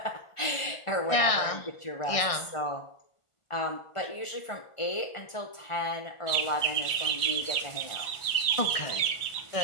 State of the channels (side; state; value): right; late; 1.4 ms